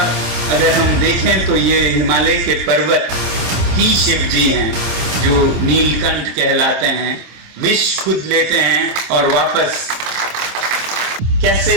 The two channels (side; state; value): left; late; 26 ms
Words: अगर हम देखें तो ये हिमालय के पर्वत ही शिव जी हैं, जो नीलकंठ कहलाते हैं, विष खुद लेते हैं और वापस कैसे